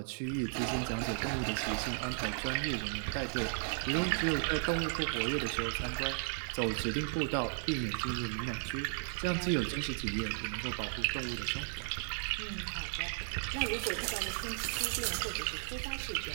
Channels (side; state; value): left; silent; 54 dB below the other